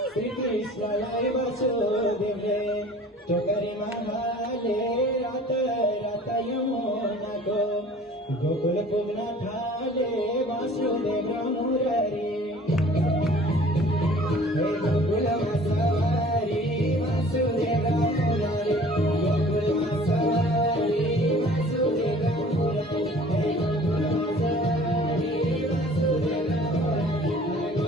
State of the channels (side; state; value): both; normal; correlation 0.49